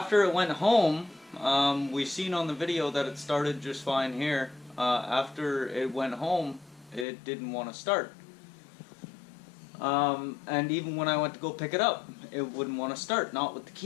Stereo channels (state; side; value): drops out; right; at 7.1 s